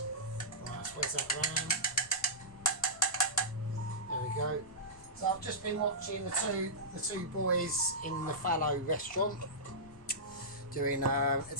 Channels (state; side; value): noise; left; rumble, 24 dB below the sound